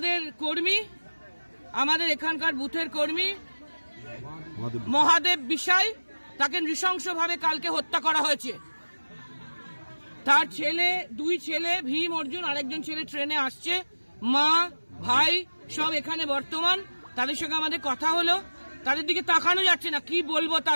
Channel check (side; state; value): both; inverted; correlation -1.00